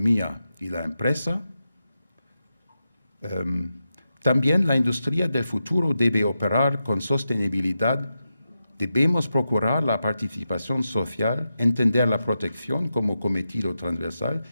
y la empresa, también la industria del futuro debe operar con sostenibilidad. Debemos procurar la participación social, entender la protección como cometido transversal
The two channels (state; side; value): inverted; both; correlation -0.88